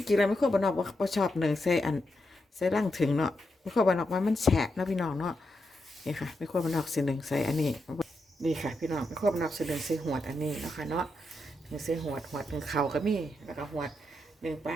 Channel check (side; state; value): both; normal; correlation 0.84